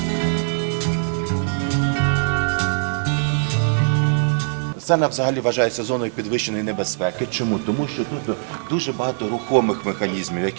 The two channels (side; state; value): left; silent; 65 dB below the other